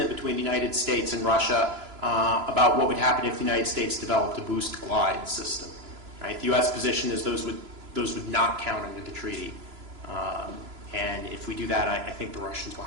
between the United States and Russia about what would happen if the United States developed a boost glide system. Right? The U.S. position is those would not count under the treaty. And if we do that, I think the Russians will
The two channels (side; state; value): left; late; 3.0 ms